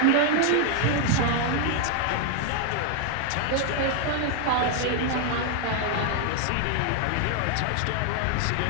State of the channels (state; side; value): different; both; correlation 0.00